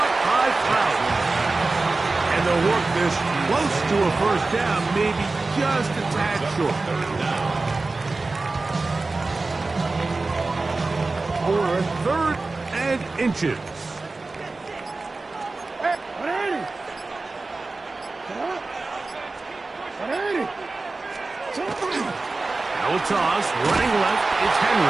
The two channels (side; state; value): left; quieter; 3.5 dB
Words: by Cloud. And they'll work this close to a first down, maybe just a tad short. For third and inches. Now a toss, running left, it's